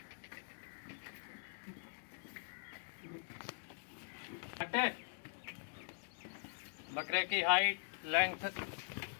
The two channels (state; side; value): silent; right; digital silence